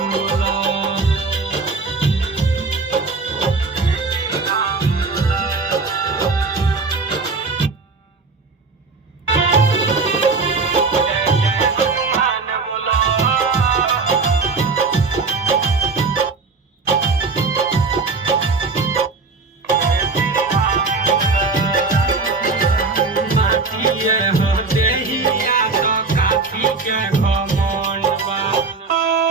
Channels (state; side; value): quieter; left; 4.2 dB